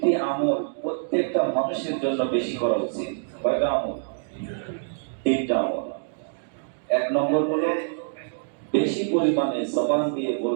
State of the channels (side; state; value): left; silent; digital silence